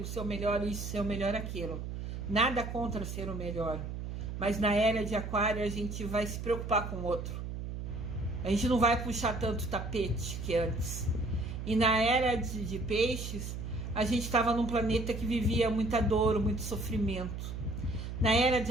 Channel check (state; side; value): noise; right; hum, 6 dB below the sound